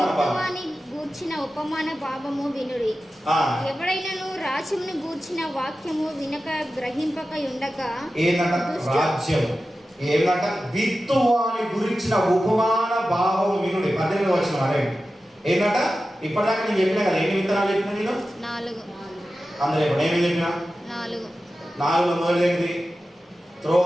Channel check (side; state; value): both; normal; correlation 0.93